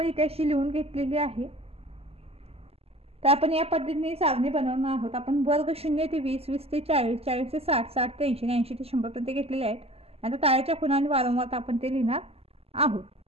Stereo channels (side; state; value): left; late; 0.29 ms